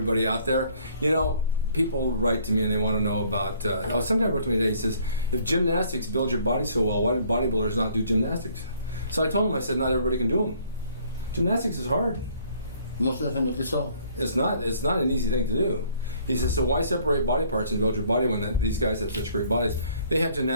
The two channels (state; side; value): inverted; both; correlation -0.61